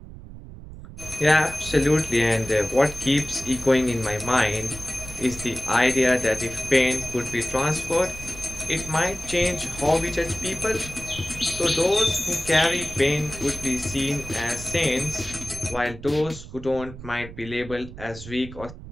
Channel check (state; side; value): noise; right; rumble, 14 dB below the sound